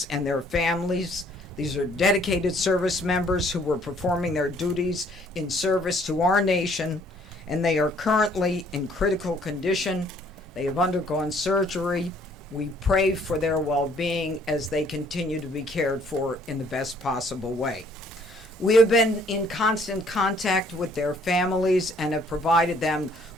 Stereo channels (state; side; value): normal; both; correlation 0.61